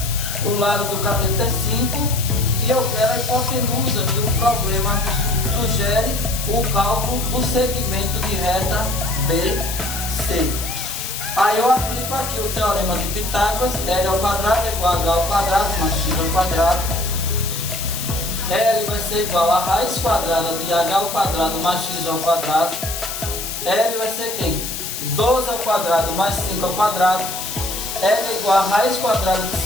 o lado do cateto é 5 e eu quero a hipotenusa, que o problema sugere o cálculo do segmento de reta BC. Aí eu aplico aqui o teorema de Pitágoras, L ao quadrado é igual a H ao quadrado mais X ao quadrado. L vai ser igual a raiz quadrada de H ao quadrado mais X ao quadrado. L vai ser quem? 12 ao quadrado mais 5 ao quadrado. L é igual a raiz quadrada de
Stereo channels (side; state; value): left; noise; hiss, 6 dB below the sound